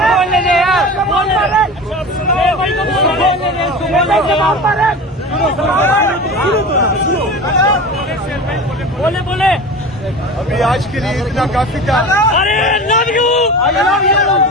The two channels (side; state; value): both; normal; correlation 0.32